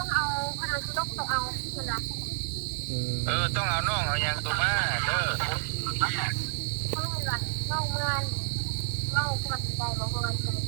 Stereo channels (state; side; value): silent; left; digital silence